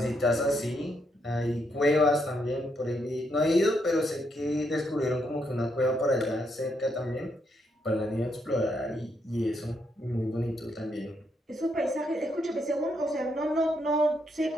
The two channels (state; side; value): normal; both; correlation 0.77